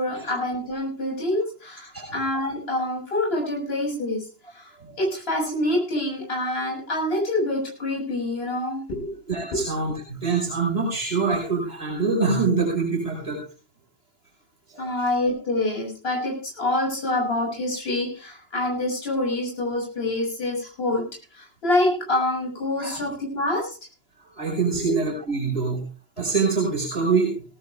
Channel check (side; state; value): right; late; 2.9 ms